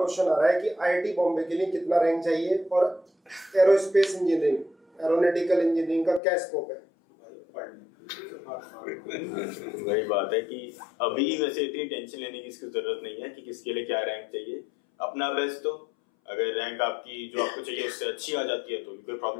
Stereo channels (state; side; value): drops out; right; at 6.2 s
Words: आ रहा है कि IIT बॉम्बे के लिए कितना रैंक चाहिए और एरोस्पेस इंजीनियरिंग, एरोनॉटिकल इंजीनियरिंग का क्या स्कोप है? वही बात है कि अभी वैसे इतनी टेंशन लेने की इसकी जरूरत नहीं है कि किसके लिए क्या रैंक चाहिए। अपना बेस्ट तो अगर रैंक आपकी जो आपको चाहिए उससे अच्छी आ जाती है तो कोई